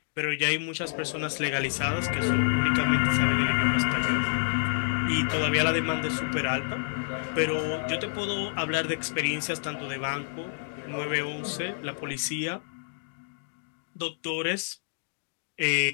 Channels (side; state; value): right; silent; digital silence